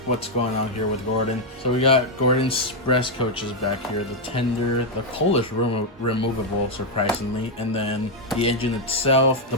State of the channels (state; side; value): normal; both; correlation 0.00